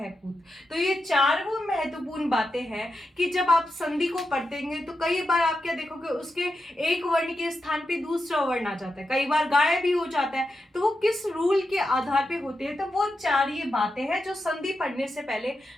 पूत। तो ये चार वो महत्वपूर्ण बातें हैं कि जब आप संधि को पढ़तेंगे तो कई बार आप क्या देखोगे, उसके एक वर्ण के स्थान पे दूसरा वर्ण आ जाता है, कई बार गायब भी हो जाता है, तो वो किस रूल के आधार पे होते हैं। तो वो चार ये बातें हैं जो संधि पढ़ने से पहले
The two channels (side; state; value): both; normal; correlation 0.88